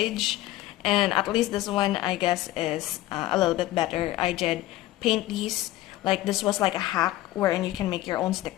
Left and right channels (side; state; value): right; quieter; 16.0 dB